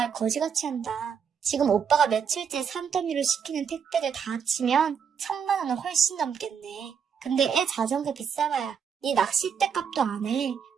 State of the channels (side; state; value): left; quieter; 7.0 dB